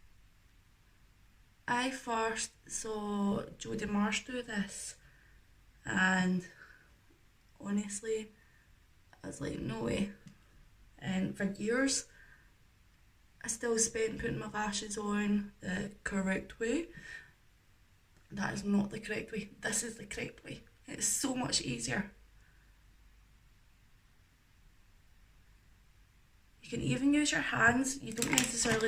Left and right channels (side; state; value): both; identical; correlation 1.00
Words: I first saw Jodie Marsh do this, and honestly, I was like, no way. And for years, I still spent putting my lashes on the correct way. That is not the correct way. This is the correct way. It's so much easier. You can even use your hands. You don't